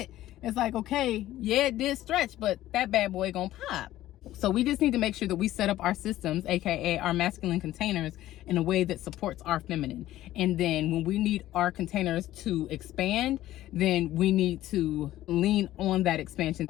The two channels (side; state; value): right; quieter; 14.5 dB